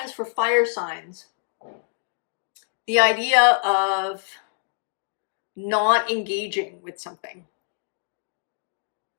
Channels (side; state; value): right; silent; digital silence